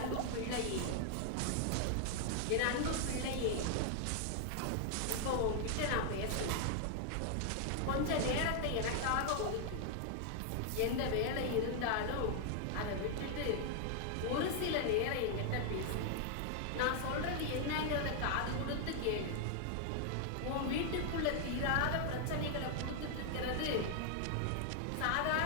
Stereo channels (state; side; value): different; both; correlation 0.00